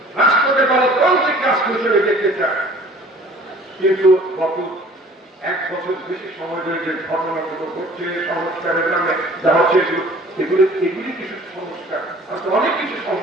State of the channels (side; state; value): both; normal; correlation 0.50